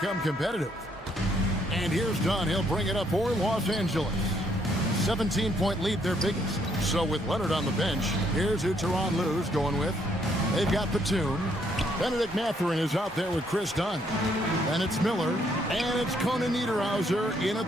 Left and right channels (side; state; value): both; normal; correlation 0.70